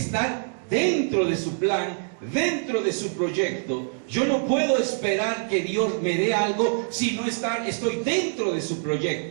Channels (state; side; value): silent; left; digital silence